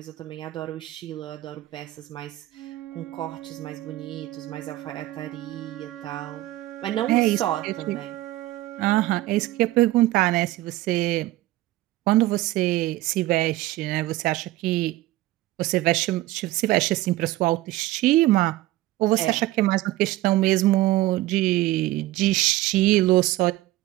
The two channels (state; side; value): quieter; left; 16.8 dB